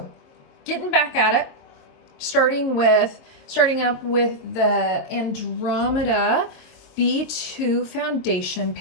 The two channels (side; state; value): right; late; 22 ms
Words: getting back at it, starting up with the Andromeda B2 foundation